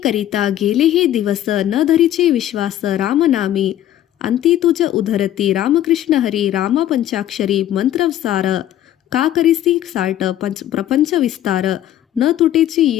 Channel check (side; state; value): right; quieter; 12.3 dB